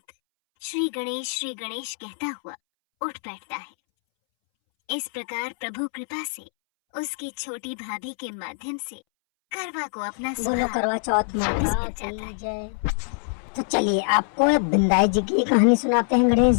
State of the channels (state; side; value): silent; right; 62 dB below the other